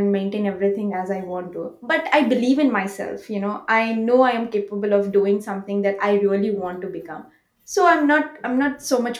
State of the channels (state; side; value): identical; both; correlation 1.00